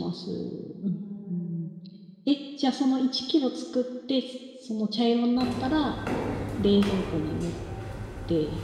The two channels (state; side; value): identical; both; correlation 1.00